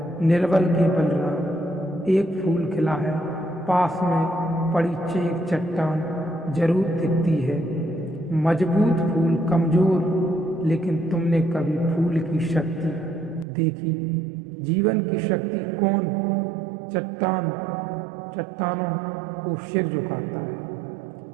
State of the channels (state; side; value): drops out; left; at 13.5 s